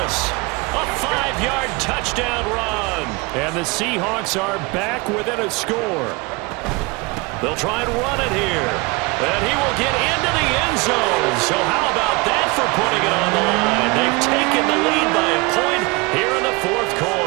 A 5-yard touchdown run. And the Seahawks are back within a score. They'll try and run it here. And he will get into the end zone. So how about that for putting it on the line? They've taken the lead by a point here in the fourth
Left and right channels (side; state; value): left; quieter; 26.0 dB